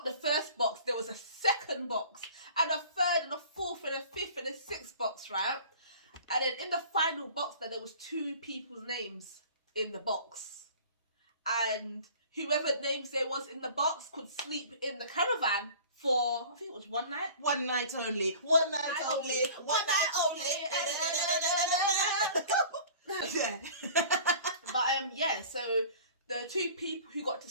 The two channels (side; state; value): both; inverted; correlation -0.45